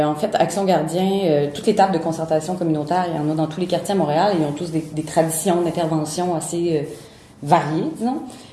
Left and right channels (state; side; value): identical; both; correlation 1.00